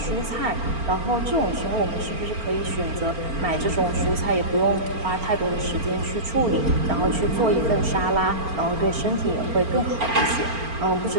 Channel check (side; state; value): left; late; 4.4 ms